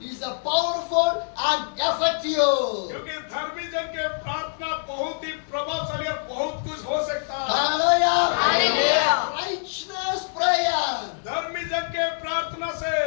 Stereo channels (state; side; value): silent; right; digital silence